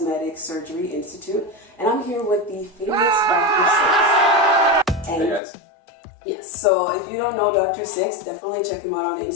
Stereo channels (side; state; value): right; drops out; at 5.4 s